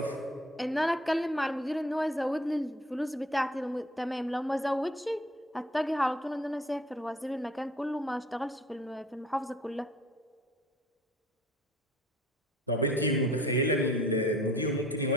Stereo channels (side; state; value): both; normal; correlation 0.53